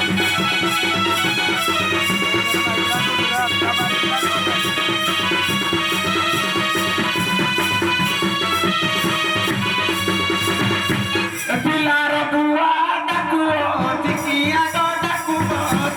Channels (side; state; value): both; identical; correlation 1.00